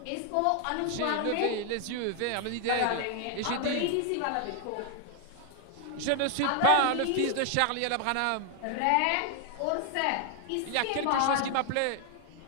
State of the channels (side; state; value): both; different; correlation 0.00